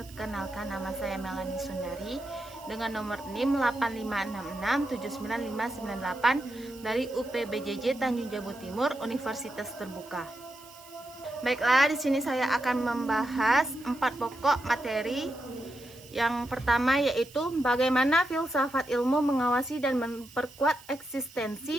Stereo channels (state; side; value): noise; right; hiss, 21 dB below the sound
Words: nama saya Melani Sundari dengan nomor NIM 8566799598 dari UPBJJ Tanjung Jabung Timur, Universitas Terbuka. Baiklah, di sini saya akan membahas 4 pokok materi. Yang pertama yaitu bagaimana filsafat ilmu mengawasi dan memperkuat